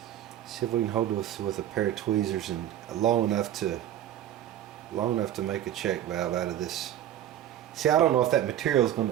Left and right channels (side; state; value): left; quieter; 11.5 dB